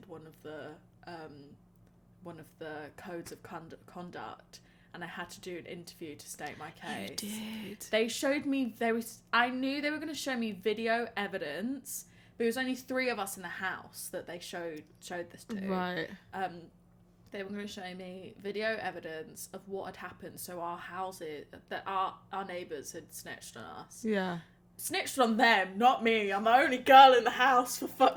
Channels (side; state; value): both; identical; correlation 1.00